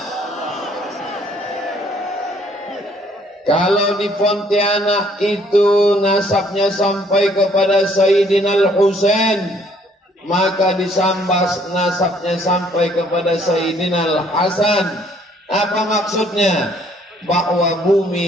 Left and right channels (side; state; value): both; normal; correlation 0.63